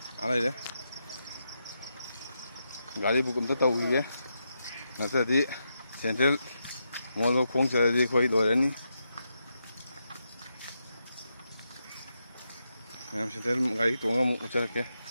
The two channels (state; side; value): inverted; both; correlation -0.84